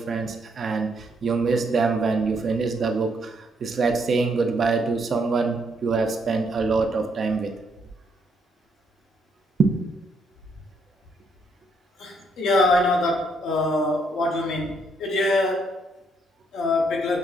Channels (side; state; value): both; normal; correlation 0.73